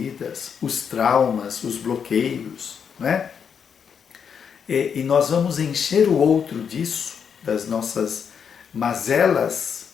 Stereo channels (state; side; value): quieter; right; 7.1 dB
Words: os traumas, os bloqueios, né? E nós vamos encher o outro disso, das nossas mazelas,